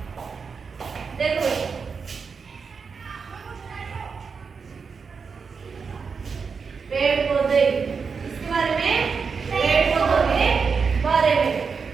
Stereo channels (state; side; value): quieter; left; 5.4 dB